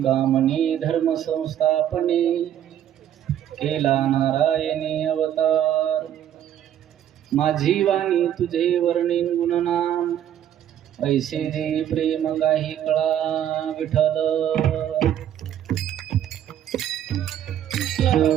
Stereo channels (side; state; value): left; quieter; 10.7 dB